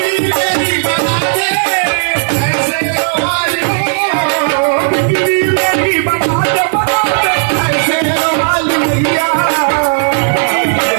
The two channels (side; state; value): left; silent; digital silence